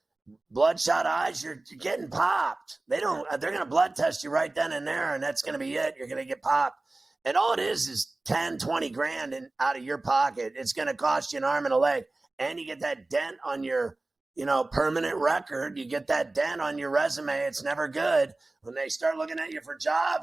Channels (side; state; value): left; quieter; 3.0 dB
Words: bloodshot eyes, you're getting popped. They're going to blood test you right then and there, and that's going to be it. You're going to get popped. And all it is 10, 20 grand out of your pocket. It's going to cost you an arm and a leg. And you get that dent on your, permanent record. You get that dent on your resume. It's never good. When they start looking at you for